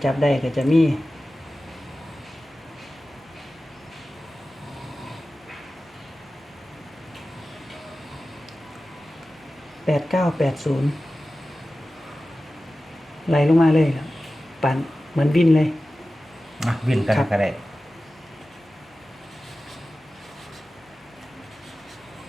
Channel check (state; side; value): normal; both; correlation 0.95